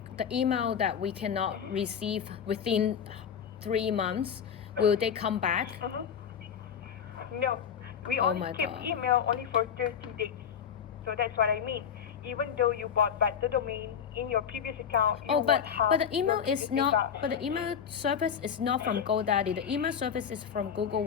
the email that we cannot receive within 3 months? Will they come back? No. We only keep email only for 30 days. So that's what I mean. Even though you bought back the domain in your previous account, but the email is not. But the email service is not from GoDaddy. The email service is from Google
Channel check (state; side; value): quieter; right; 7.8 dB